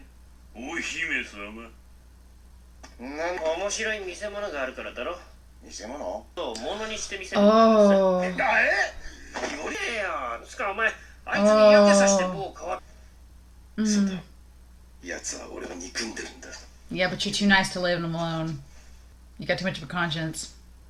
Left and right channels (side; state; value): both; identical; correlation 1.00